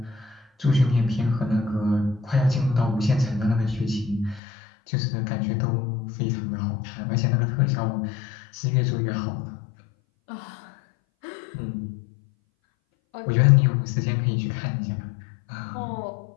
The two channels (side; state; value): right; drops out; at 4.4 s